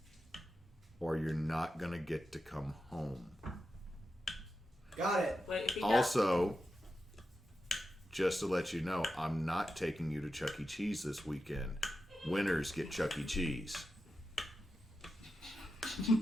or you're not gonna get to come home. Got it. Wait, if he Also, just to let you know, I'm not taking you to Chuck E. Cheese this weekend. Winners get Chuck E. Cheese.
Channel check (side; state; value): both; normal; correlation 0.90